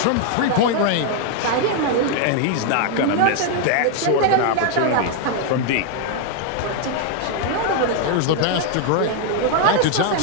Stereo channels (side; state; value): both; different; correlation 0.00